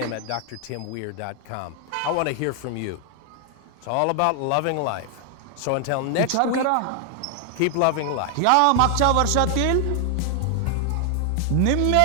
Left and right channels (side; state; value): both; different; correlation 0.00